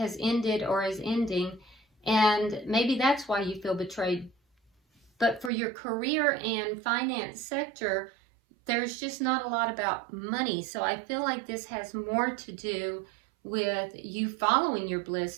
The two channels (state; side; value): drops out; left; at 5.5 s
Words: ended or is ending. And maybe that's why you feel betrayed. But for your career and finance sector, there's just not a lot about money. So I feel like this has more to do with you following your bliss,